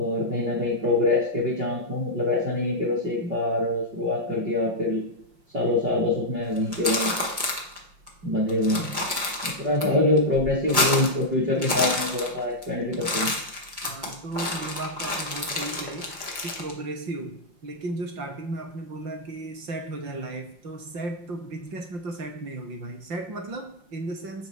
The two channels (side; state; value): left; late; 5.7 ms